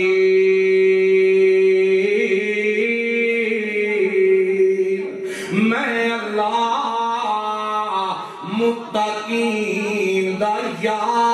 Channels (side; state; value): both; identical; correlation 1.00